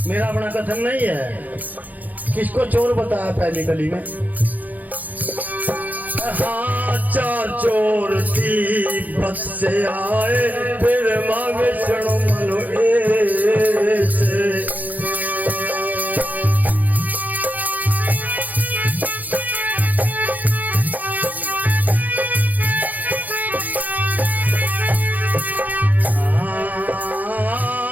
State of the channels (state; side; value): late; left; 0.081 ms